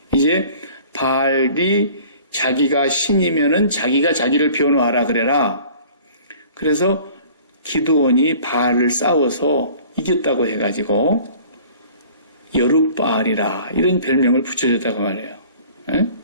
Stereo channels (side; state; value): both; inverted; correlation -0.49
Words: 이제 바알이 자기가 신이면은 자기가 자기를 변호하라 그래라. 그래서 기드온이 바알을 싸워서 이겼다고 해가지고 여룻바알이라 이런 별명을 붙여줬다고 말해요.